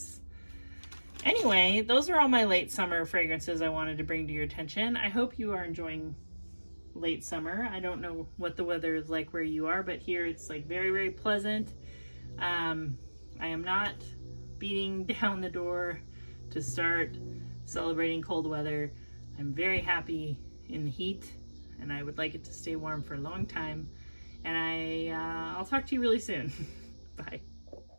Anyway, those are all my late summer fragrances I wanted to bring to your attention. I hope you are enjoying late summer. I don't know what the weather is like where you are, but here it's like very pleasant. I am not beating down the door to start celebrating cold weather. I'm very happy in the heat, and I would like it to stay warm for a long time. And I'll talk to you really soon. Bye.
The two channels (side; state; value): both; inverted; correlation -1.00